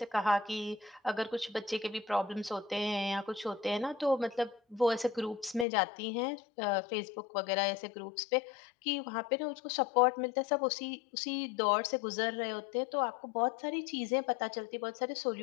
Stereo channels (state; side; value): drops out; right; at 5.7 s